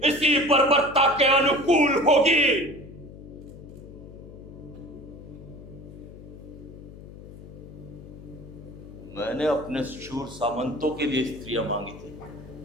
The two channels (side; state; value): left; noise; hum, 16 dB below the sound